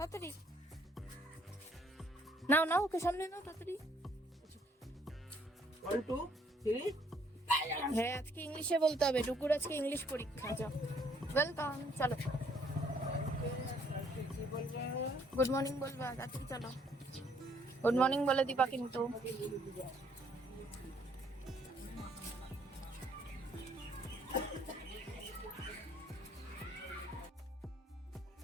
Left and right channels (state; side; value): normal; both; correlation 0.65